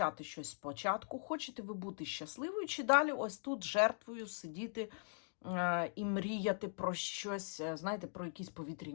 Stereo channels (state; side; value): silent; right; digital silence